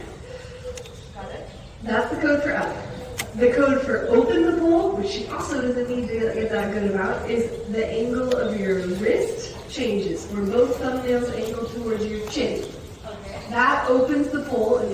of. Got it? That's the code for up. The code for open the pole, which she also doesn't need to get that good about, is the angle of your wrist changes, where both thumbnails angle towards your chin. Okay. That opens the pole and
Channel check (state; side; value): identical; both; correlation 1.00